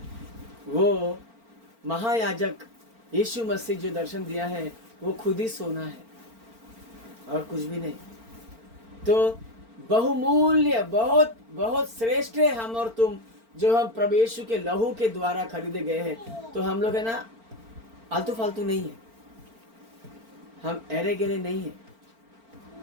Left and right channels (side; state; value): left; late; 4.4 ms